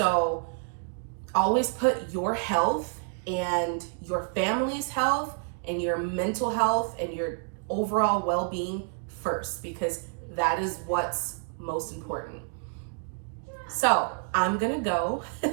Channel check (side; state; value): left; silent; 57 dB below the other